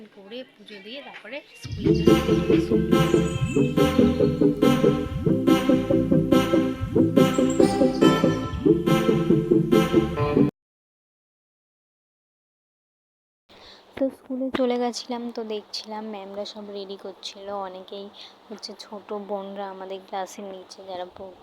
করে পুজো দিয়ে তারপরে স্কুলে তো স্কুলে চলে গেছিলাম। তো দেখছিলাম ম্যামরা সব রেডি করছিল। অনেকেই হচ্ছে ছোট বোনরা আমাদের ক্লাসের নিচে যারা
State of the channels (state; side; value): identical; both; correlation 1.00